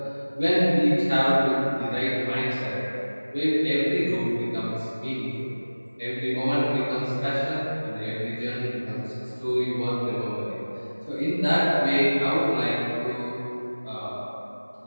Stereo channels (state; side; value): inverted; both; correlation -1.00